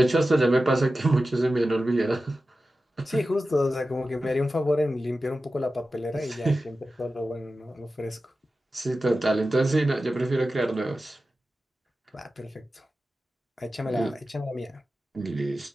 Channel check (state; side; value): normal; both; correlation 0.93